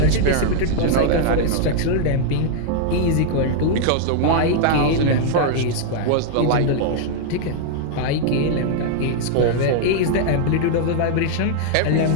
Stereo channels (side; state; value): both; different; correlation -0.01